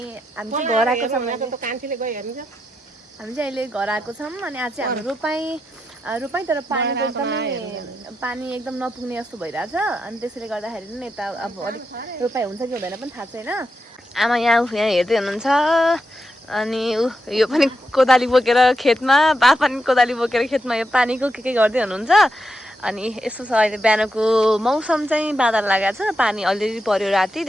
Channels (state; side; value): normal; both; correlation 0.85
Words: हामी चाहिँ घर आएको छौँ। हामी चाहिँ अहिले घर आएको छौँ अनि आज चाहिँ हाम्रो रोपाई तर पानी एकदम नपुग्ने जस्तो भइरहेछ अनि त्यसैले गर्दाखेरि नि यता अब अलिक रोपाई हुन्छ कि हुँदैन पनि थाहा छैन। आमा यहाँ हेर्दै हुनुहुन्छ अनि यो पनि कोदाली बोकेर खेतमा, बा पनि कोदाली बोकेर खेतमा यो पानीको के गर्दै हुनुहुन्छ। अनि यस्तो छ अहिले बिहानको मौसम चाहिँ बादल लागेको छ, पानी अलिअलि पर्यो राति,